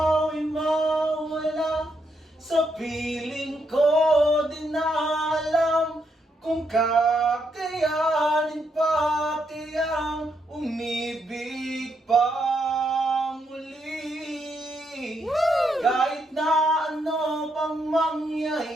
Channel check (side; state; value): both; normal; correlation 0.78